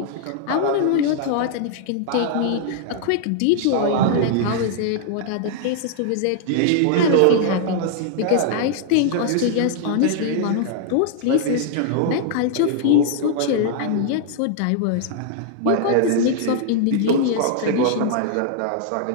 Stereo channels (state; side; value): different; both; correlation -0.01